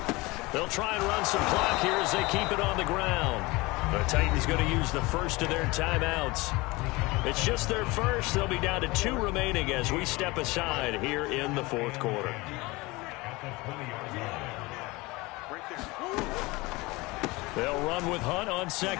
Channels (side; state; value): right; quieter; 22.9 dB